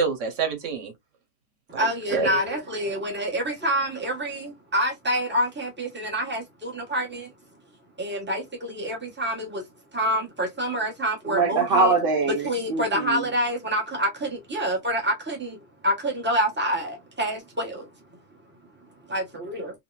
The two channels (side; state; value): both; normal; correlation -0.14